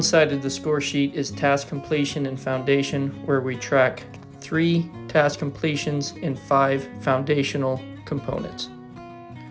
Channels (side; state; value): both; identical; correlation 1.00